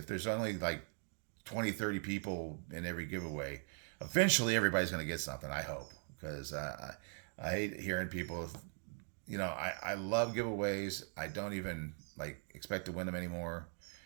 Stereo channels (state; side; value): silent; left; 51 dB below the other